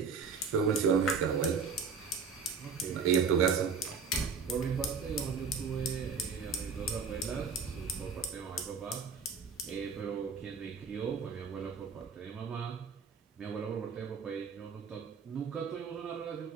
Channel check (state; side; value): quieter; left; 5.4 dB